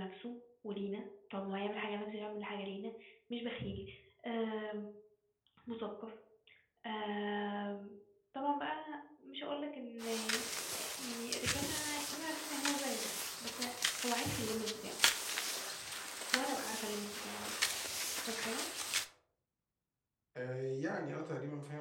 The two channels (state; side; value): identical; both; correlation 1.00